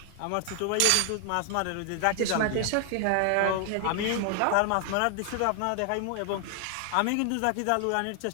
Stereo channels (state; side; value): different; both; correlation 0.00